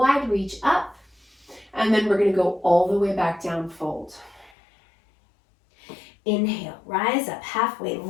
reach up, and then we're going to go all the way back down, fold. Inhale, rise up halfway,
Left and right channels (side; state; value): right; drops out; at 4.5 s